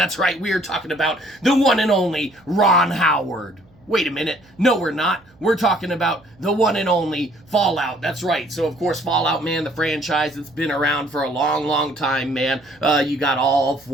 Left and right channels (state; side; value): noise; right; hum, 30 dB below the sound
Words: right, we're talking about the one and only Ron Howard. Wait a minute. No, we're not. We're talking about the one and only Fallout. That's right. So, of course, Fallout, man, the franchise that's been around for a long, long time, man. You got all